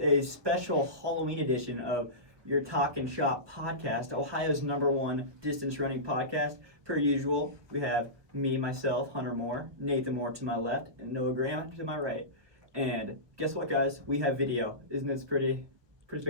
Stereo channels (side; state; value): left; late; 1.2 ms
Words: special Halloween edition of your Talkin Shop podcast, Ohio's #1 distance running podcast. Per usual, we have me, myself, Hunter Moore, Nathan Moore to my left, and Noah Graham to my right. And guess what, guys? We have video. Isn't this pretty